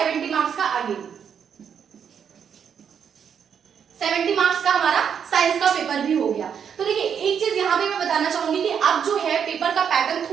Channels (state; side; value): quieter; left; 7.7 dB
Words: मार्क्स का अगेन। 70 मार्क्स का हमारा साइंस का पेपर भी हो गया। तो देखिए एक चीज यहाँ पे मैं बताना चाहूंगी कि अब जो है पेपर का पैटर्न